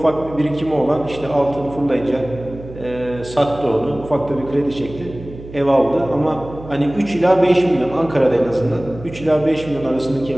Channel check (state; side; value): noise; right; hum, 15 dB below the sound